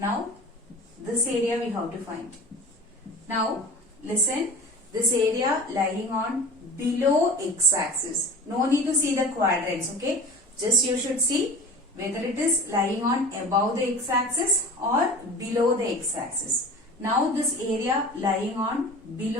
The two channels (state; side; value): normal; both; correlation 0.37